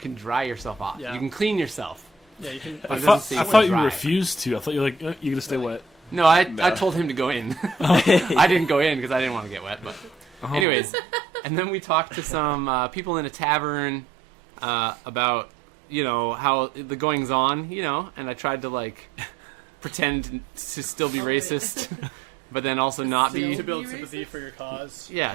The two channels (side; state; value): left; drops out; at 10.7 s